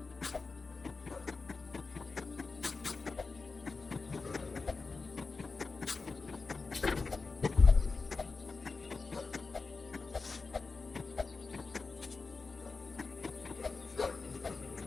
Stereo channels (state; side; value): quieter; right; 4.2 dB